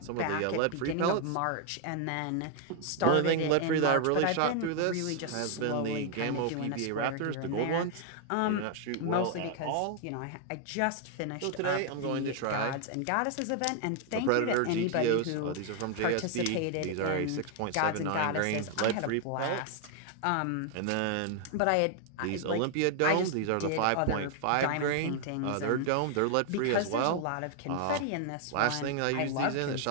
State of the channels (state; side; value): different; both; correlation 0.00